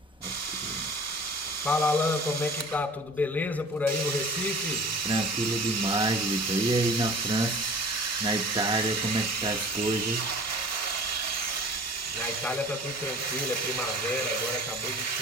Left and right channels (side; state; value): both; normal; correlation 0.43